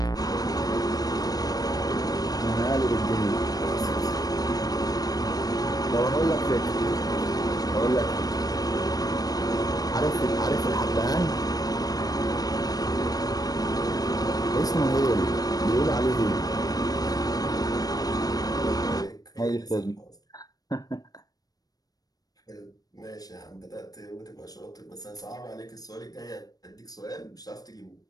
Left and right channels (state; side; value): late; right; 0.18 ms